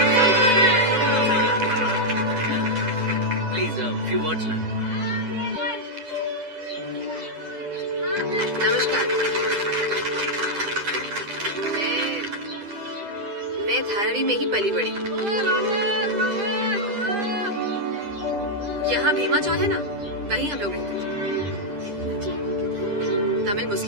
Please few words ma'am. नमस्कार, मैं धारावी में ही पली बड़ी। यहाँ भीमा चौल है ना, वहीं हम लोग रहते थे। तमिल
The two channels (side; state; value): left; late; 10 ms